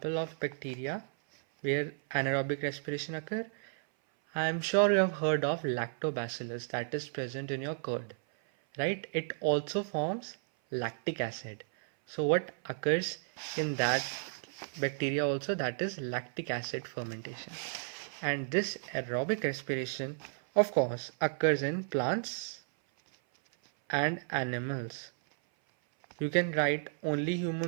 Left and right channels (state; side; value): silent; left; 56 dB below the other